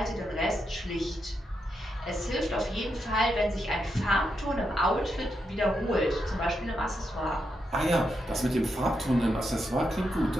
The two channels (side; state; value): both; normal; correlation 0.84